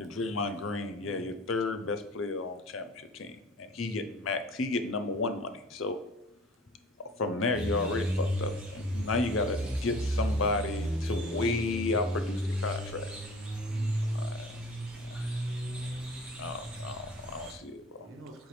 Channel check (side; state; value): both; normal; correlation 0.44